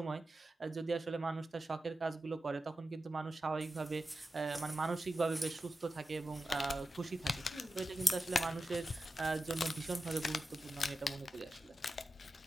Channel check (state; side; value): normal; both; correlation 0.92